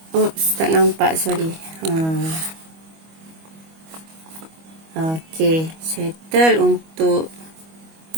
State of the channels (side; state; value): left; late; 25 ms